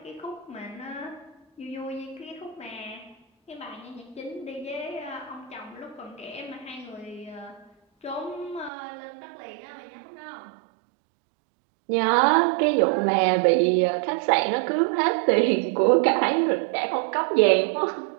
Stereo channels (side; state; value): left; drops out; at 8.7 s